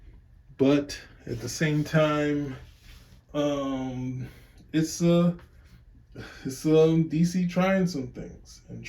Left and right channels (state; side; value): identical; both; correlation 1.00